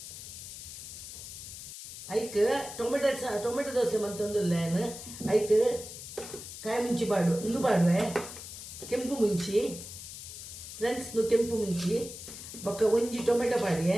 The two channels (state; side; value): noise; left; hiss, 11 dB below the sound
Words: ಐಕ್ ಟೊಮೆಟೊ ದೋಸೆ ಬಂತಂದಿಲ್ಲ ಏನು ಐಕ್ ಕಾಯಿ ಮುಂಚಿ ಪಾಡು ಇಂದು ಪಾಡುವೆ ಕೆಂಪು ಮುಂಚಿ ಫ್ರೆಂಡ್ಸ್ ಕೆಂಪು ಮುಂಚಿ ಬೊಕ್ಕ ಒಂಜಿ ಟೊಮೆಟೊ ಪಾಡಿಯೆ